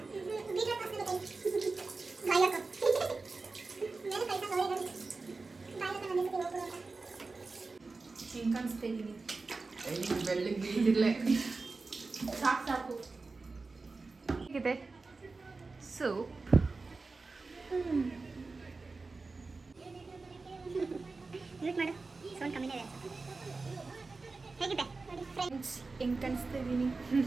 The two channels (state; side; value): quieter; left; 3.8 dB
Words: ಬೀಟ್ರೂಟ್ ಹಾಕ್ಬೇಕು ಬಾಯಕ್ಕ ಮೇಲೆ ಕೈ ತಗೊಳ್ಳಿ ಬಾಯಕ್ಕ ನನಗೆ ಹೋಗ್ಬಿಡೋಣ. ಹೆಂಗೆ ಕಾಣಿಸ್ತಾ ಇದ್ದೀನಿ? ಬೆಳ್ಳಗೆ ಬೀಳ್ತಿರ್ಲೆ. ಸಾಕು ಹೇಗಿದೆ ಸೂಪ್? ಮ್ಯೂಟ್ ಮಾಡು, ಸೌಂಡ್ ಕಮ್ಮಿನೇ ಇದೆ. ಹೇಗಿದೆ ಫ್ರೆಂಡ್ಸ್, ಹೆಂಗೆ ಕಾಣಿಸ್ತಾ ಇದ್ದೀನಿ?